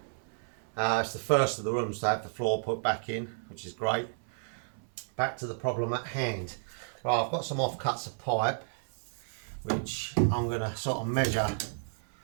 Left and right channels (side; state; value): left; silent; 57 dB below the other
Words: It's the first of the rooms to have the floor put back in, which is great. Back to the problem at hand. Right, I've got some offcuts of pipe, which I'm going to sort of measure